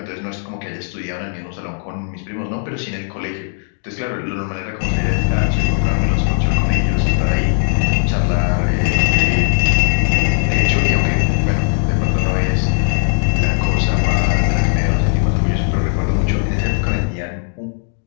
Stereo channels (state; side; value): silent; right; 66 dB below the other